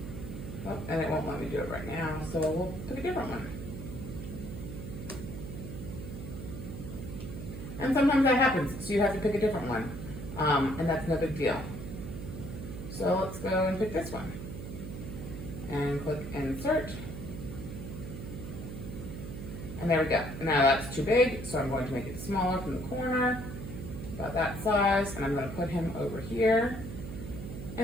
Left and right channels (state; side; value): noise; right; hum, 8 dB below the sound